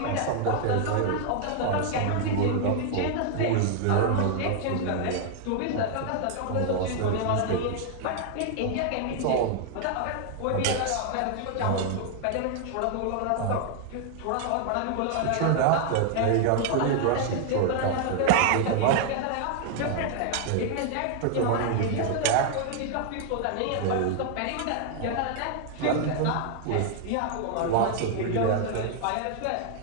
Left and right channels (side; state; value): both; different; correlation 0.00